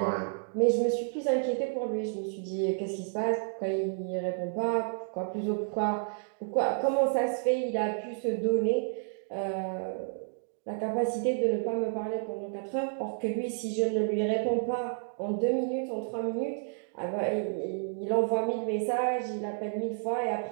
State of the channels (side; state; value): left; silent; digital silence